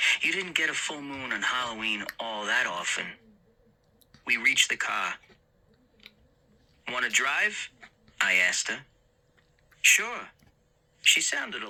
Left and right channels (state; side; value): identical; both; correlation 1.00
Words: You didn't get a full moon on Halloween all that often. We reached the car. Want to drive? I asked her. Sure. She sounded a